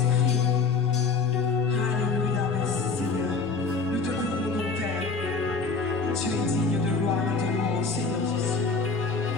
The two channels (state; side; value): quieter; right; 4.6 dB